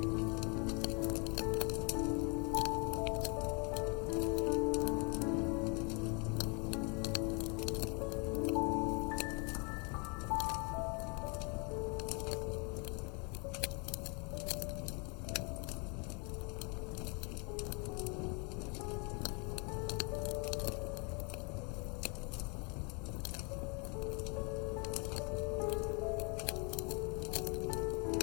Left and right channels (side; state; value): right; quieter; 33.6 dB